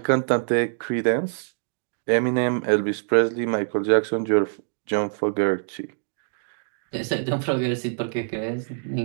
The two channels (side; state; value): left; silent; digital silence